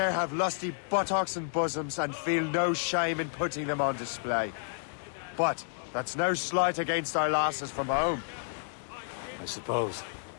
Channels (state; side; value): silent; right; 57 dB below the other